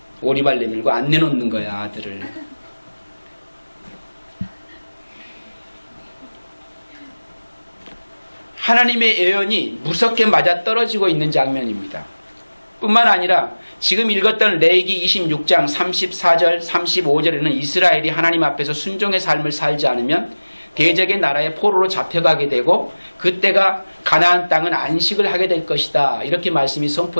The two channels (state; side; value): inverted; both; correlation -1.00